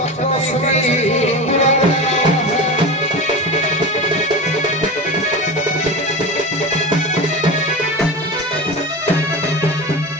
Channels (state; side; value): normal; both; correlation 0.27